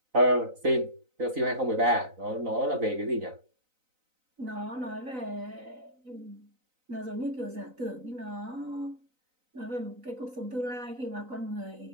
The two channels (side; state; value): left; late; 3.9 ms